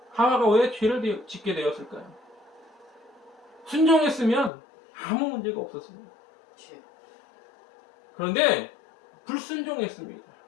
하와가 왜 죄를 짓게 되었을까요? 순종했으면 아무 문제가 없었습니다. 그런데 불순종했습니다.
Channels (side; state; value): right; drops out; at 4.5 s